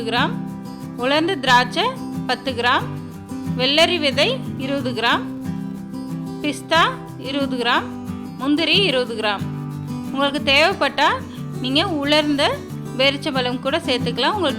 கிராம் உலர்ந்த திராட்சை 10 கிராம் வெள்ளரி விதை 20 கிராம் பிஸ்தா 20 கிராம் முந்திரி 20 கிராம் உங்களுக்கு தேவைப்பட்டால் நீங்கள் உலர்ந்த பேரிச்சம்பழம் கூட சேர்த்துக்கலாம்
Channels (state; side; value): identical; both; correlation 1.00